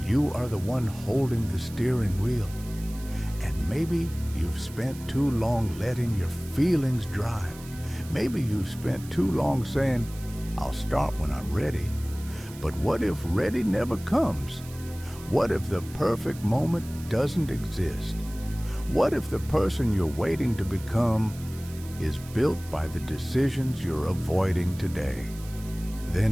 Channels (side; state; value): right; noise; hiss, 18 dB below the sound